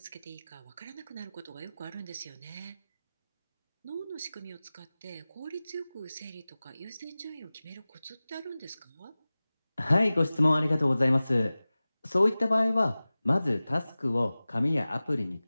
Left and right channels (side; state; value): both; inverted; correlation -0.98